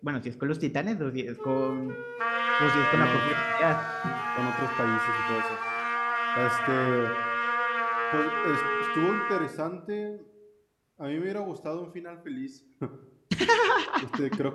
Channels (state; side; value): identical; both; correlation 1.00